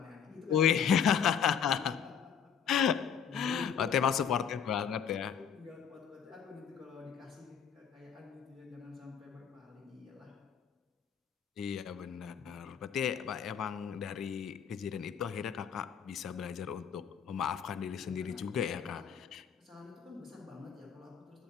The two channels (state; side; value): quieter; right; 7.7 dB